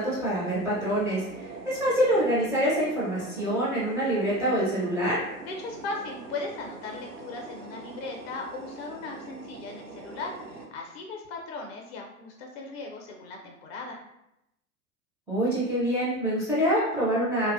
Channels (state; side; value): normal; both; correlation 0.29